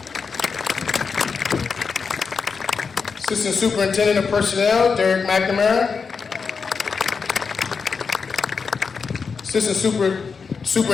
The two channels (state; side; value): quieter; right; 5.4 dB